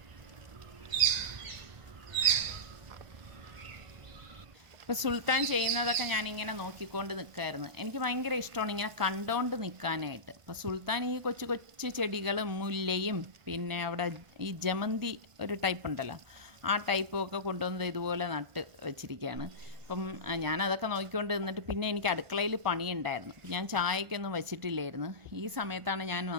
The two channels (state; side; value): late; left; 1.4 ms